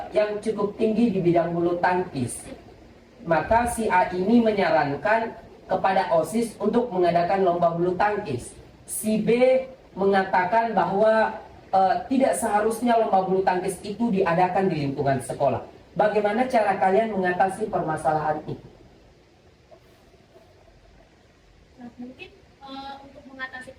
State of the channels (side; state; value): both; identical; correlation 1.00